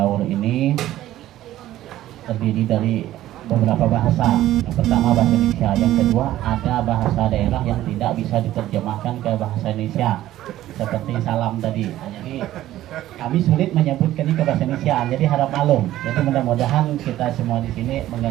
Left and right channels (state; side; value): quieter; left; 14.0 dB